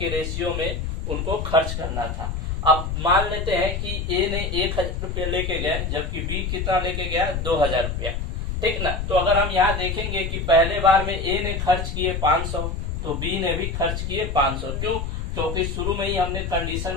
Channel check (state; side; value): noise; left; rumble, 3 dB below the sound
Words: रेशियो में उनको खर्च करना था। अब मान लेते हैं कि ए ने 1,000 रुपया लेके गए जबकि बी कितना लेके गया, 2,000 रुपया। ठीक ना। तो अगर हम यहाँ देखेंगे कि पहले बार में ए ने खर्च किए 500 तो बी ने भी खर्च किए 500। क्यों? क्योंकि शुरू में ही हमने